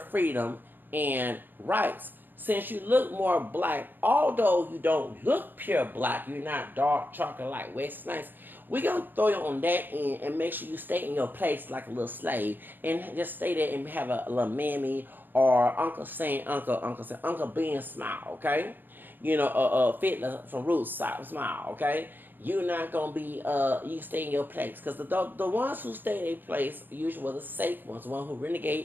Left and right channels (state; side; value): late; left; 0.092 ms